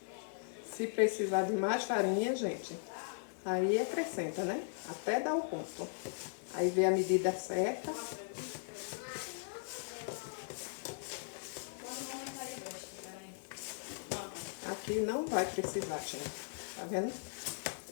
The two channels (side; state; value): right; silent; digital silence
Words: Se precisar de mais farinha, gente, aí acrescenta, né? Até dar o ponto. Aí vê a medida certa. Aqui não vai precisar, gente. Tá vendo?